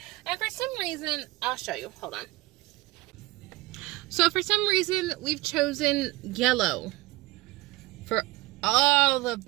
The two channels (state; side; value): quieter; left; 20.5 dB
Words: And for some reason, I'll show you. Hold on. So for some reason, we've chosen yellow for all of